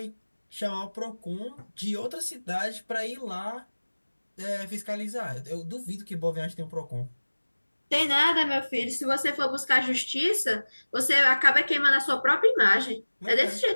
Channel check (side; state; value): both; inverted; correlation -1.00